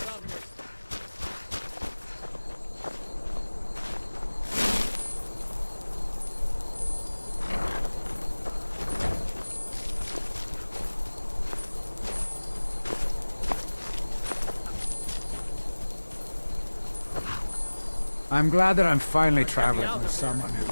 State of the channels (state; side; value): inverted; both; correlation -1.00